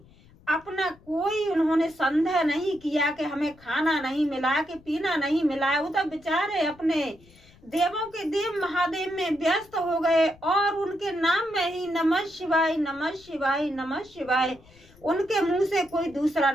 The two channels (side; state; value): left; noise; rumble, 27 dB below the sound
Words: अपना कोई उन्होंने संदेह नहीं किया कि हमें खाना नहीं मिला, कि पीना नहीं मिला। वो तो बेचारे अपने देवों के देव महादेव में व्यस्त हो गए और उनके नाम में ही नमः शिवाय नमः शिवाय नमः शिवाय, उनके मुंह से कोई दूसरा